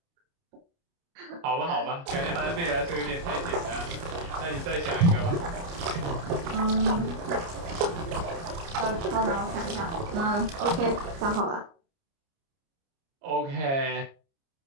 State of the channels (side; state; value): left; late; 29 ms